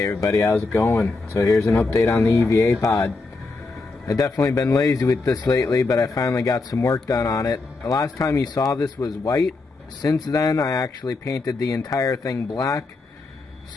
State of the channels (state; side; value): quieter; right; 3.6 dB